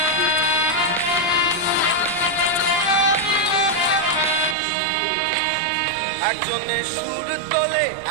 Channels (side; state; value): left; drops out; at 4.5 s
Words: একজনে সুর তোলে